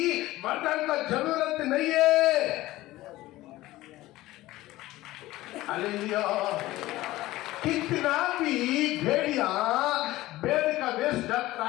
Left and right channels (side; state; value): right; quieter; 17.2 dB